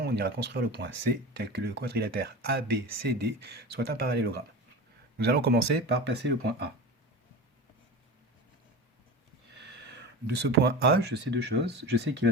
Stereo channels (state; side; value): normal; both; correlation 0.30